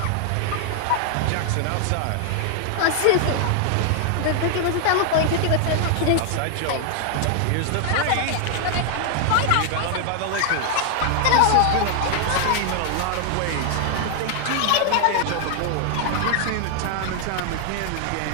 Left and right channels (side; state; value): both; different; correlation 0.00